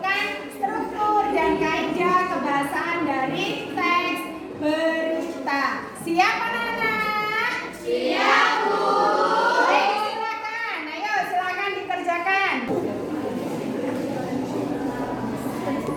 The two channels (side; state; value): both; identical; correlation 1.00